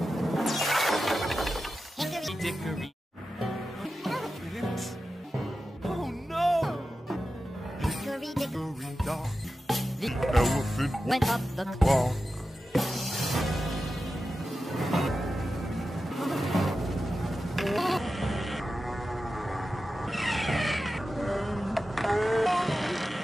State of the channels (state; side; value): normal; both; correlation 0.92